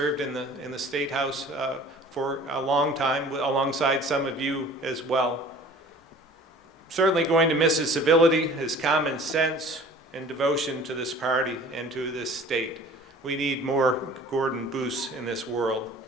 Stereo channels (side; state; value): both; normal; correlation 0.46